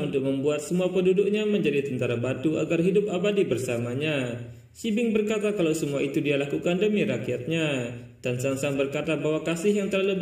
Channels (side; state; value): both; identical; correlation 1.00